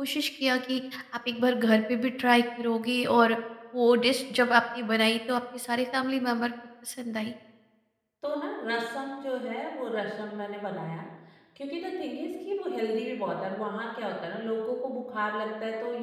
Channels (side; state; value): both; identical; correlation 1.00